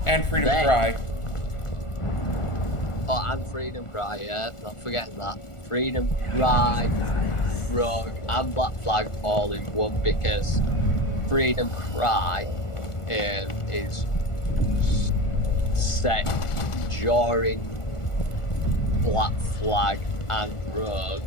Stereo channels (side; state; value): right; late; 1.4 ms